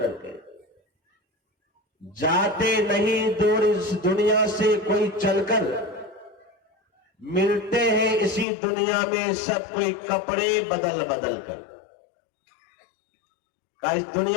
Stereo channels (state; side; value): drops out; right; at 8.5 s